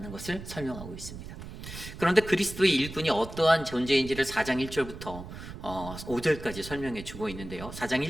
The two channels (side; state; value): right; noise; rumble, 12 dB below the sound